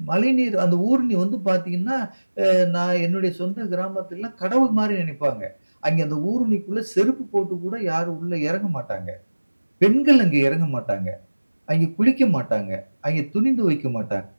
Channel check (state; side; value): inverted; both; correlation -1.00